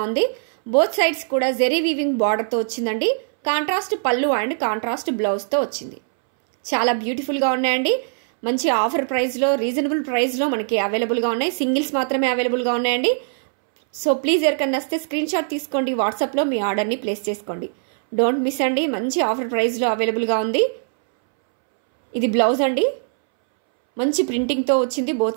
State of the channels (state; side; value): silent; left; 65 dB below the other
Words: ఉంది. బోత్ సైడ్స్ కూడా జెరీ వీవింగ్ బార్డర్తో వచ్చిందండి. కాంట్రాస్ట్ పళ్ళు అండ్ కాంట్రాస్ట్ బ్లౌజ్తో వచ్చింది. చాలా బ్యూటిఫుల్గా ఉన్నాయండి. మంచి ఆఫర్ ప్రైస్లో, రీజనబుల్ ప్రైస్లో మనకి అవైలబుల్గా ఉన్నాయి. సింగిల్స్ మాత్రమే అవైలబుల్గా ఉన్నాయండి. సో ప్లీజ్ ఎవరికన్నా వస్తే స్క్రీన్ షాట్ తీసుకోండి, వాట్సాప్లో మీ ఆర్డర్ని ప్లేస్ చేసుకోండి. డోంట్ మిస్ అండి, మంచి ఆఫర్ ప్రైస్లో అవైలబుల్గా ఉంది. ఇది బ్లౌజ్ అండి, మంచి ప్రింటింగ్తో వచ్చింది,